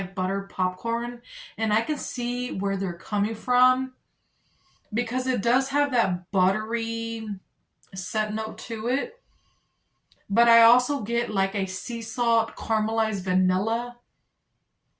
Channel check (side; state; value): both; identical; correlation 1.00